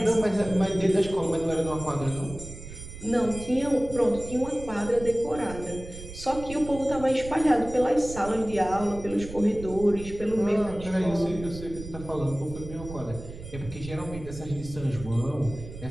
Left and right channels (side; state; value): right; noise; rumble, 12 dB below the sound